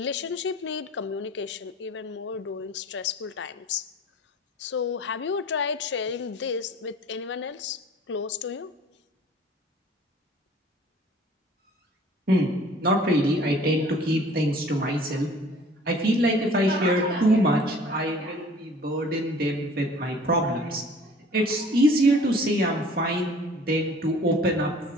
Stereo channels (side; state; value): both; normal; correlation 0.49